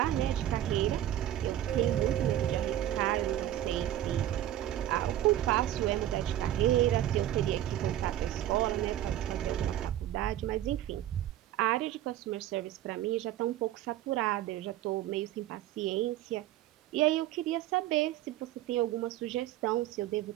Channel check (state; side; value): quieter; left; 12.8 dB